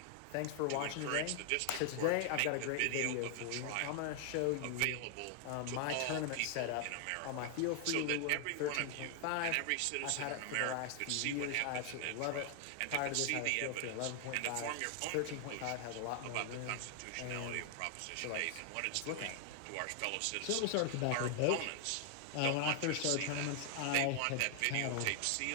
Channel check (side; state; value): both; different; correlation 0.00